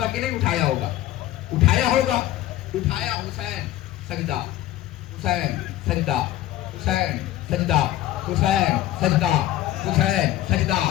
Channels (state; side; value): quieter; right; 14.2 dB